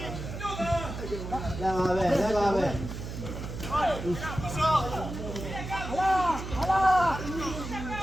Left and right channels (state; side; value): noise; right; hum, 8 dB below the sound